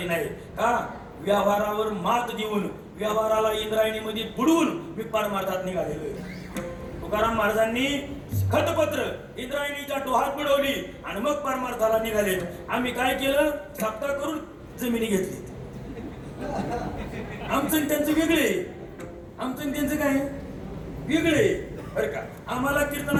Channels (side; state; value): both; identical; correlation 1.00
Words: नाही का? व्यवहारावर मात देऊन व्यवहाराला इंद्रायणीमध्ये बुडवून मी परमार्थात निघालेलो आहे. तुकाराम महाराजांनी खतपत्र इंद्रायणीच्या डोहात बुडवली आणि मग परमार्थाला निघाले. आम्ही काय केलं? सप्ताह करून जमिनी घेतली. आमचं त्यांचं वेगळे, आमचं त्यांचं काय वेगळे बरं का? आम्हाला